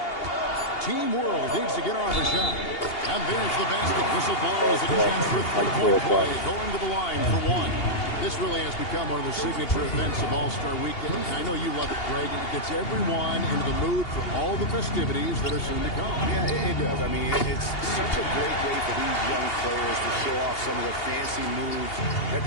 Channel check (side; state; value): right; late; 2.8 ms